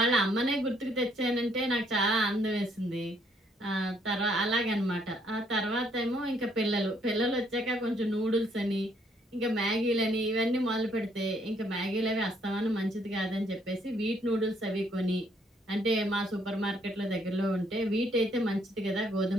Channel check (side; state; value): both; normal; correlation 0.68